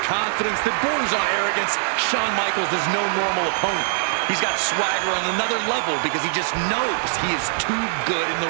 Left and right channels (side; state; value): left; silent; digital silence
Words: confidence that borders on arrogance, Shawn Michaels is no normal opponent. He's got swagger on another level because he just knows he is too good in